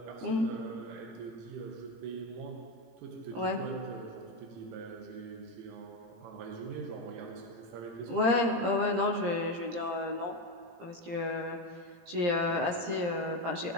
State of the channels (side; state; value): left; late; 17 ms